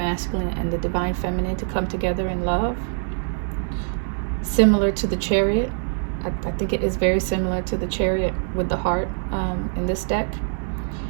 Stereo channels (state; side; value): silent; left; 63 dB below the other